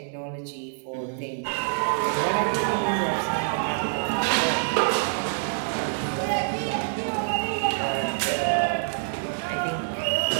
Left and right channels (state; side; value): silent; left; digital silence